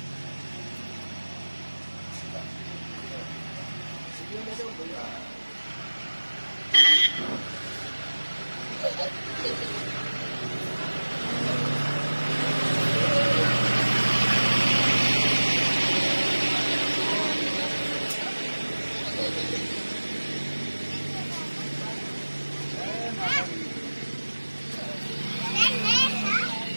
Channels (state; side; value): inverted; both; correlation -1.00